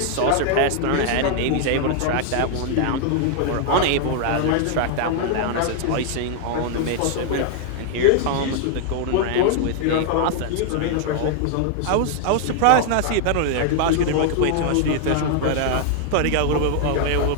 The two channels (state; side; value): different; both; correlation 0.00